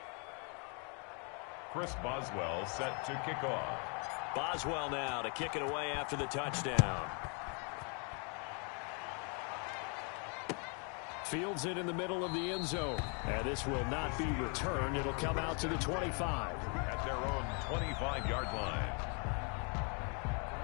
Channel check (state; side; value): quieter; right; 37.0 dB